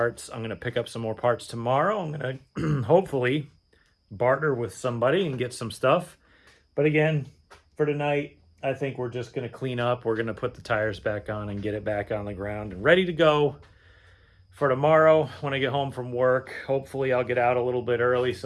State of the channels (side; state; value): both; identical; correlation 1.00